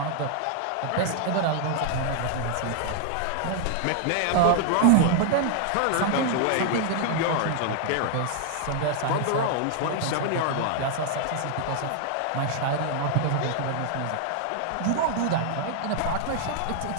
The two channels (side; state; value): both; different; correlation 0.00